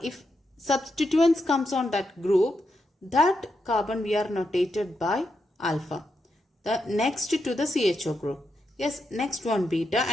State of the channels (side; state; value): both; normal; correlation 0.84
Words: if substituents comes on that group, that carbon we are notated by alpha. The next to the CHO group. Yes, next one beta